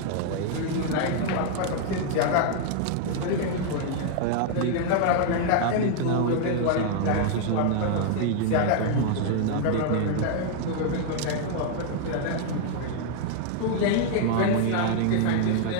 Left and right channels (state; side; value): different; both; correlation 0.00